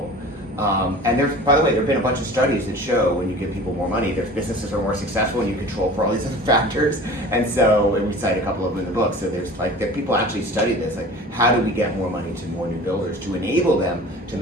And by the way, there have been a bunch of studies that show when you give people more money, their businesses are more successful and you control for all these other factors. And we cite a couple of them in the book. So there's people actually study this, like how do we get more money to more new builders to enable them to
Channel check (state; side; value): normal; both; correlation 0.40